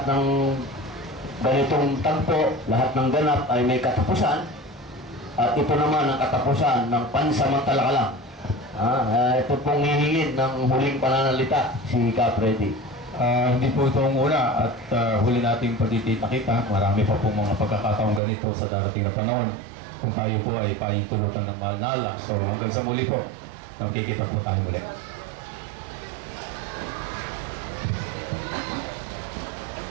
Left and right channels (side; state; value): left; drops out; at 18.2 s